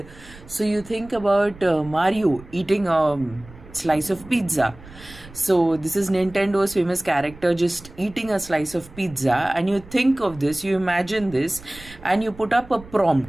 So, you think about Mario eating a slice of pizza. So this is Nintendo's famous character just eating a slice of pizza, and you think of this, you imagine this, and you put up a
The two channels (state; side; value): noise; right; rumble, 20 dB below the sound